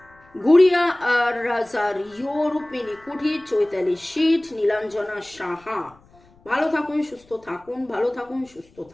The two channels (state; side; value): noise; left; rumble, 29 dB below the sound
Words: গুড়িয়া রাজার, রূপমিনী কুঠি, চৈতালি শীত, নীলাঞ্জনা সাহা। ভালো থাকুন, সুস্থ থাকুন, ভালো থাকুন, সুস্থ